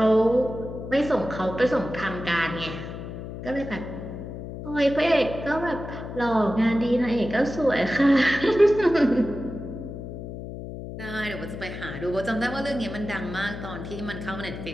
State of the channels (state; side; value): noise; left; hum, 9 dB below the sound